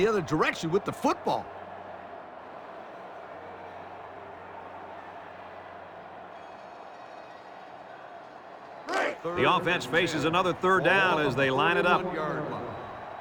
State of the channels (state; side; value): identical; both; correlation 1.00